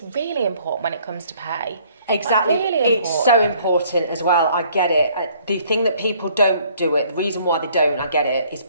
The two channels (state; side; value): inverted; both; correlation -0.60